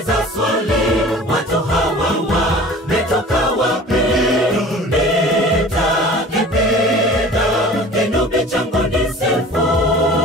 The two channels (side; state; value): both; normal; correlation 0.43